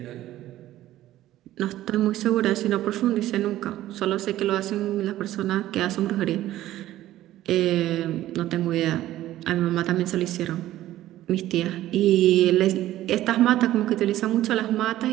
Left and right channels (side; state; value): left; quieter; 14.3 dB